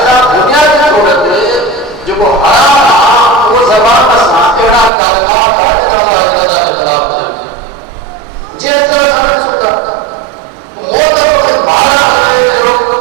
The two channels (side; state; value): left; drops out; at 4.9 s